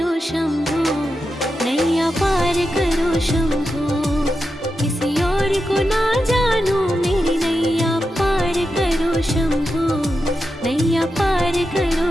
शंभू, नैया पार करो शंभू। किसी और को ना जानू मेरी नैया पार करो शंभू, नैया पार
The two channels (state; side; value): normal; both; correlation 0.89